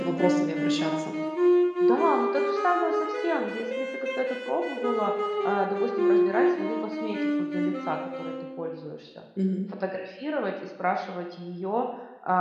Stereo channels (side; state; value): both; identical; correlation 1.00